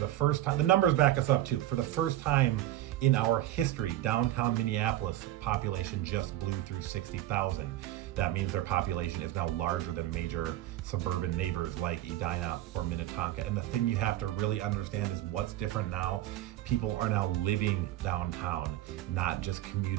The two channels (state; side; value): quieter; left; 14.2 dB